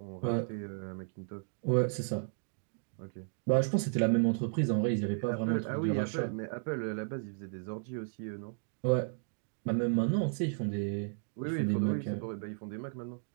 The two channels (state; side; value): silent; left; digital silence